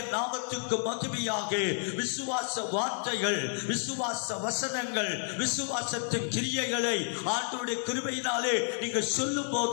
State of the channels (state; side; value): silent; right; 57 dB below the other